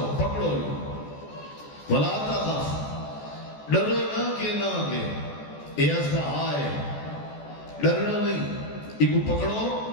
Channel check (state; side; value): late; right; 14 ms